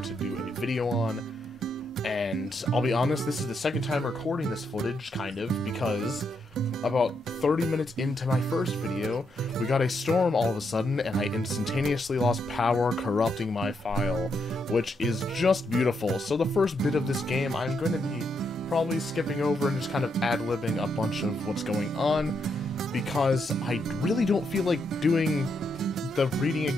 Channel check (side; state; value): both; normal; correlation 0.79